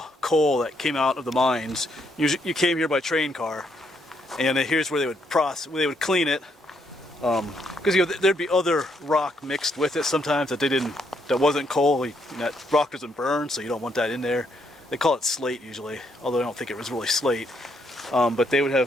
coal that came out of the mines. You came here by train car, and here's where they would clean it, because there'd be other rock mixed with it sometimes that wasn't coal. That rock doesn't burn, so you don't want that in there. They call it slate usually, although I don't think it was really slate. But they would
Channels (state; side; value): normal; both; correlation 0.74